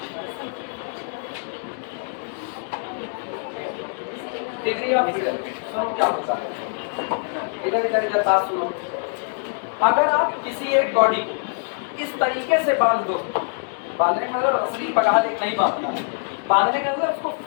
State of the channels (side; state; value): right; silent; digital silence